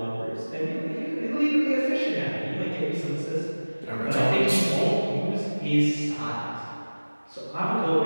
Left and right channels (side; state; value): both; inverted; correlation -1.00